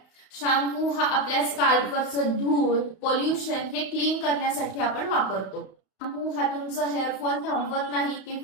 शॅम्पू हा आपल्या स्कॅल्पवरचं धूळ, पोल्युशन हे क्लीन करण्यासाठी आपण वापरतो. शॅम्पू हा तुमचं हेअर फॉल थांबवत नाही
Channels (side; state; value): right; late; 31 ms